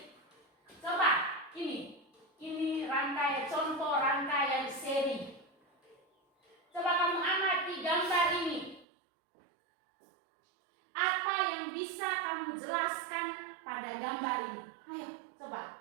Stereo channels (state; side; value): drops out; left; at 8.8 s